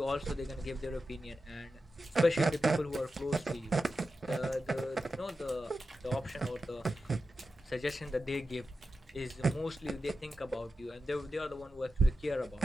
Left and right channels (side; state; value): both; normal; correlation 0.91